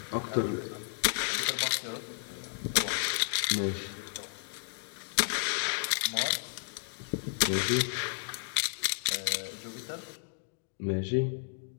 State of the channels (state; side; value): silent; right; digital silence